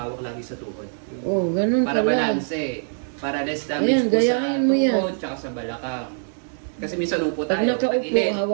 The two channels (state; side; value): silent; left; 58 dB below the other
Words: lagi sa tuhod. oh, ganun Para pala. balanse. Para less damage Ayan, po sa gayahin mo yan. tuhod tsaka sa balakang. Kasi minsan upo Pag tayo, nakaupo, pag-ilit,